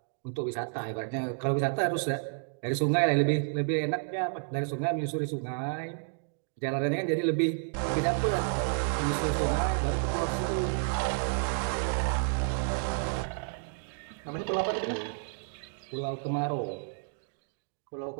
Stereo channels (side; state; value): left; silent; digital silence